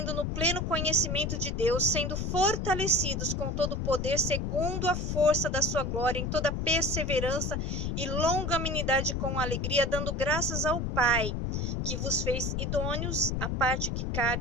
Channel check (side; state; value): left; noise; rumble, 1 dB below the sound